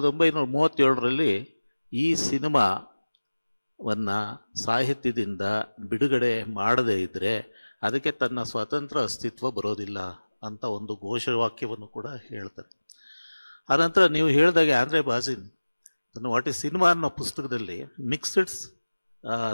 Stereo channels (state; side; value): inverted; both; correlation -1.00